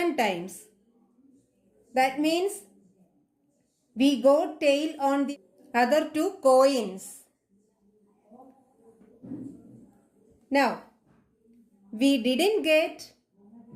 times. That means we got tail on the other two coins. Now, we didn't get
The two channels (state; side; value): identical; both; correlation 1.00